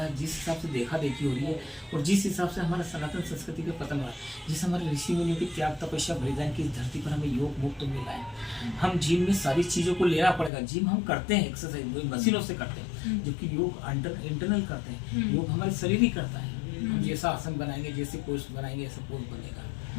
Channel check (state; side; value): drops out; right; at 10.5 s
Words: है, जिस हिसाब से देखा देखी हो रही है, और जिस हिसाब से हमारा सनातन संस्कृति का पतन हो रहा है, जिस हमारे ऋषि मुनियों की त्याग तपस्या बलिदान की धरती पर हमें योग मुक्त मिला है। हम जिम में सारी चीज़ों को लेना पड़ेगा। जिम हम करते हैं, एक्सरसाइज मशीनों से करते हैं, जबकि योग इंटरनल करते हैं। योग हमारे शरीर ही करता है। हम जैसा आसन बनाएंगे, जैसे पोस्ट बनाएंगे, ऐसा पोस्ट बनेगा।